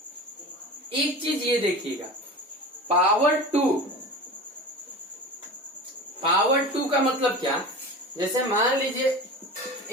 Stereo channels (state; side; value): normal; both; correlation 0.32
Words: एक चीज ये देखिएगा, पावर 2 का मतलब क्या, जैसे मान लीजिए